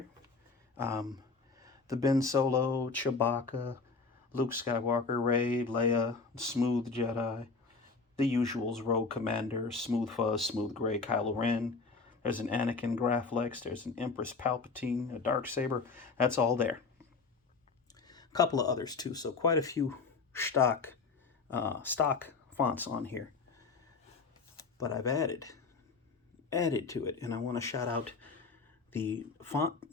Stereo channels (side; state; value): right; quieter; 4.4 dB